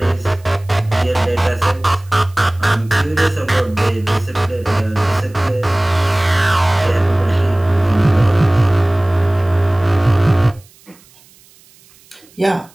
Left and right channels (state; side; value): noise; right; hiss, 28 dB below the sound